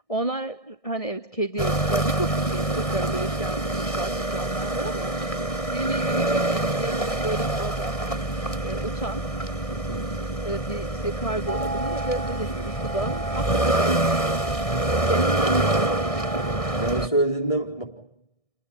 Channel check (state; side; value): late; right; 1.6 ms